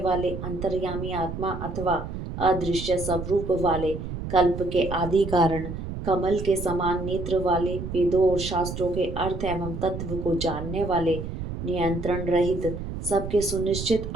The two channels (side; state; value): right; noise; rumble, 7 dB below the sound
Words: अंतर्यामी आत्मा अथवा अदृश्य स्वरूप वाले, कल्प के आदि कारण, कमल के समान नेत्र वाले, वेदों और शास्त्रों के अर्थ एवं तत्व को जानने वाले, नियंत्रण रहित, सबके सुनिश्चित